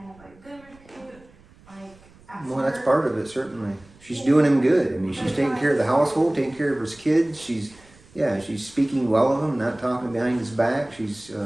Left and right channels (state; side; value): noise; right; rumble, 27 dB below the sound